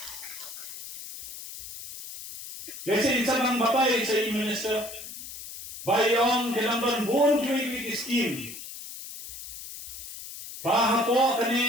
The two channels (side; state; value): left; noise; hiss, 11 dB below the sound